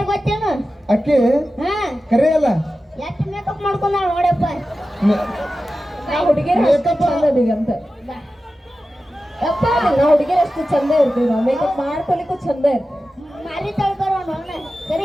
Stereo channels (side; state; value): both; normal; correlation 0.93